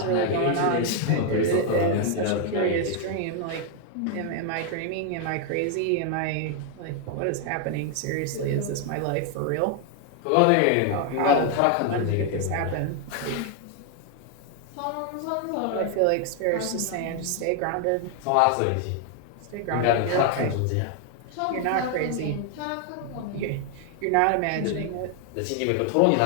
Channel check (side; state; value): both; different; correlation 0.00